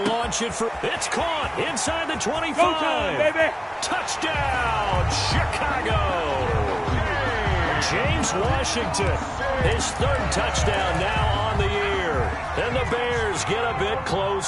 launch it for... It's caught inside the 25. Go time, baby. Touchdown, Chicago. James Washington, his 3rd touchdown now on the year. And the Bears get a bit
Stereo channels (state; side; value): identical; both; correlation 1.00